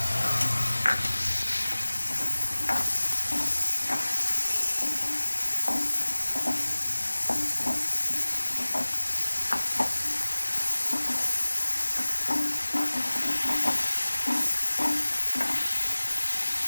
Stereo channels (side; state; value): both; inverted; correlation -1.00